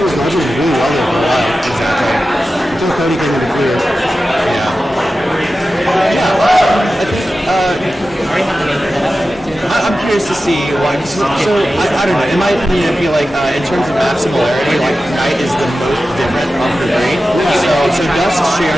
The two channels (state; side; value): normal; both; correlation 0.93